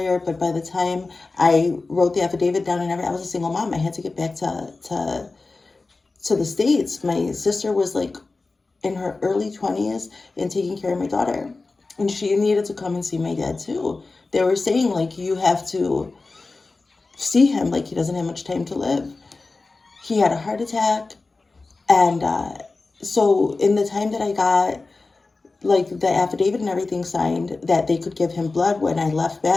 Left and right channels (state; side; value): quieter; right; 3.6 dB